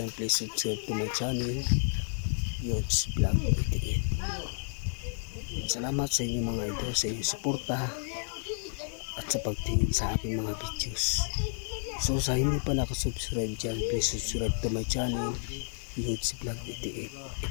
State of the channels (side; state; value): right; silent; digital silence